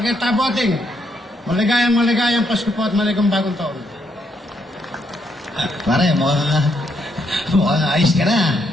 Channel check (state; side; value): normal; both; correlation 0.75